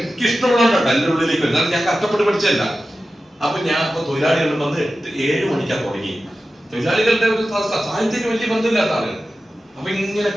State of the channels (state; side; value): normal; both; correlation 0.94